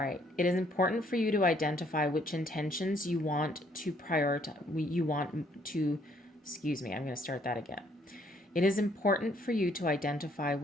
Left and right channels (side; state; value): both; normal; correlation 0.66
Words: It is important for you to identify which intentions you want to prioritize. I'm going to start that again. It is important for you to identify